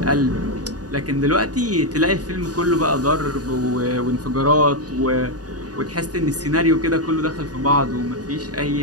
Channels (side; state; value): left; late; 0.68 ms